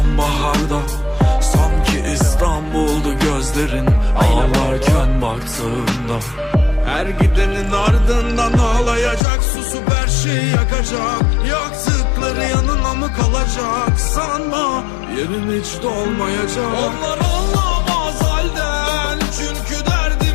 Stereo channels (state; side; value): drops out; right; at 9.2 s